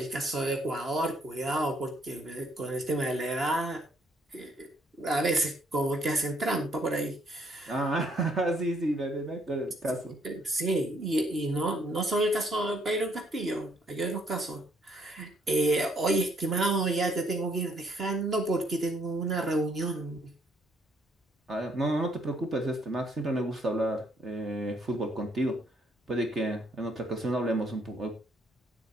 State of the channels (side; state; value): both; normal; correlation 0.68